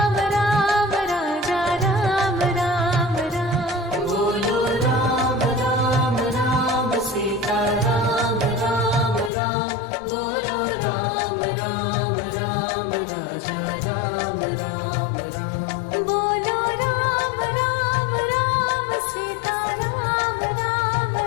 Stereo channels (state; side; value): drops out; right; at 9.3 s